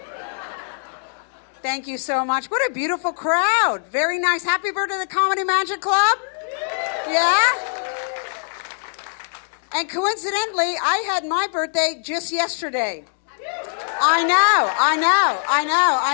Thank you so much. What a beautiful crowd. Very nice. Happy birthday to the Comedy Magic Club. Yeah? And coincidentally, I had my birthday just yesterday. I know.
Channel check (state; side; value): silent; right; digital silence